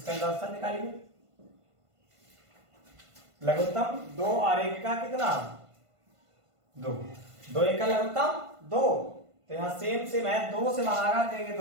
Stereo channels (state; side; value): late; left; 1.5 ms